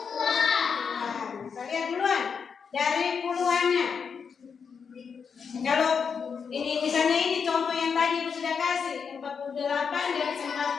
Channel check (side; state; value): right; quieter; 6.2 dB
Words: Kita lihat duluan dari puluhannya. Kalau ini misalnya ini contoh yang tadi Ibu sudah kasih 48 dan